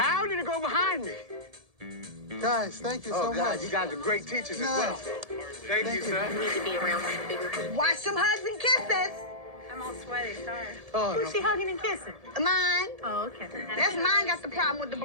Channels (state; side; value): late; left; 1.7 ms